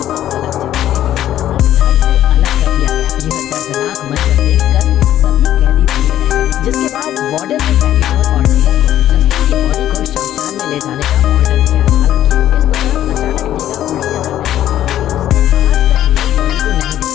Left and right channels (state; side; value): quieter; right; 12.1 dB